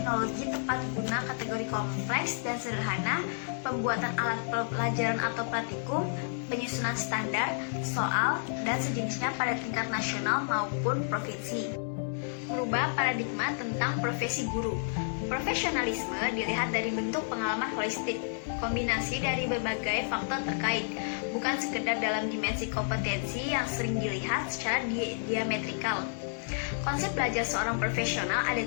tepat guna kategori kompleks dan sederhana, pembuatan alat pelajaran atau praktikum, penyusunan standar, soal, dan sejenisnya pada tingkat nasional maupun provinsi. Merubah paradigma tentang profesi guru. Profesionalisme dilihat dari bentuk pengalaman holistik, kombinasi dari berbagai faktor terkait, bukan sekedar dalam dimensi kompetensi yang sering dilihat secara diametrikal. Konsep belajar seorang profesional ada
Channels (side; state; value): right; silent; digital silence